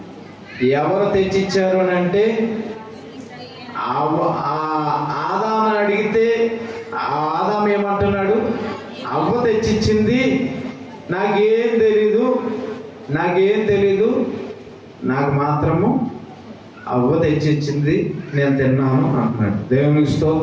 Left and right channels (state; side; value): identical; both; correlation 1.00